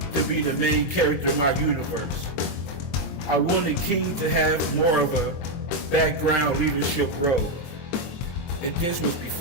to be the main character in my universe. I wanted King to have more of a background leadership role. And this was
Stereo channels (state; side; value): late; right; 23 ms